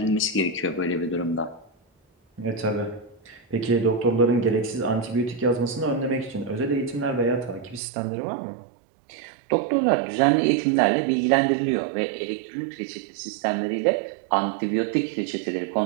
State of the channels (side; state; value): left; drops out; at 7.8 s